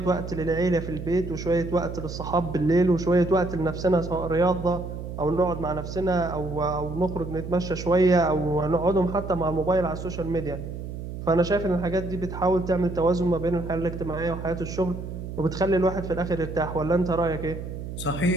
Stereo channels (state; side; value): noise; right; hum, 8 dB below the sound